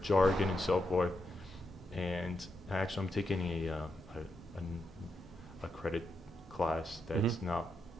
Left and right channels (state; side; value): normal; both; correlation 0.84